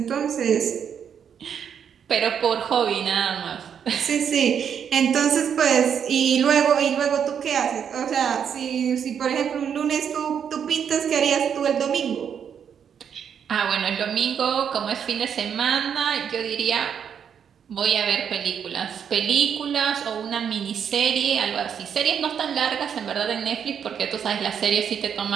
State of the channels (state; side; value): quieter; left; 7.9 dB